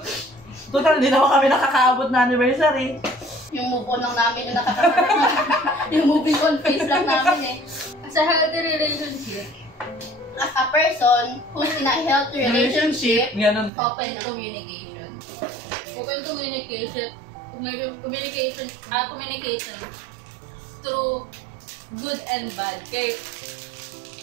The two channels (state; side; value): drops out; left; at 13.7 s